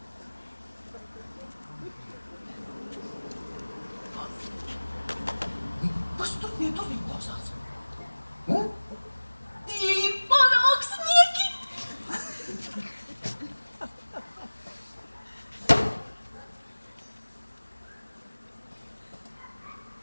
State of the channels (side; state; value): both; inverted; correlation -1.00